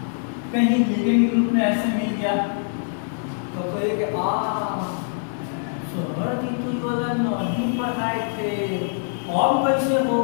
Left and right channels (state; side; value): silent; right; digital silence